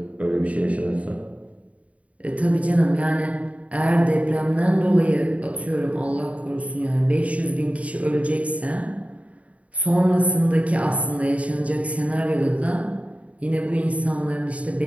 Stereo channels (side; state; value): left; late; 0.067 ms